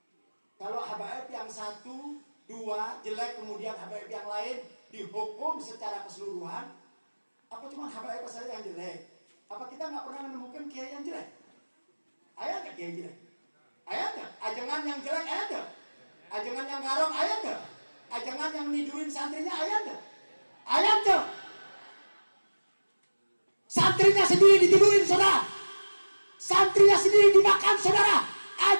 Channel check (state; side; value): inverted; both; correlation -1.00